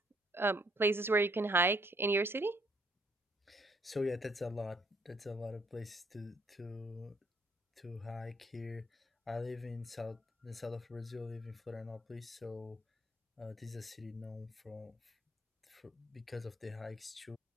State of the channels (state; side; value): normal; both; correlation 0.67